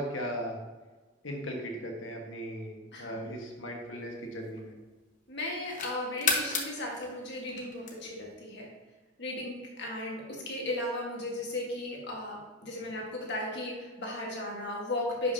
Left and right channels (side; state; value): both; normal; correlation 0.08